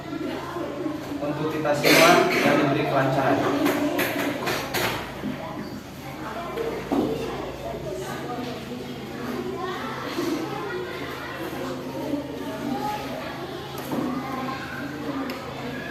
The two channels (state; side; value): identical; both; correlation 1.00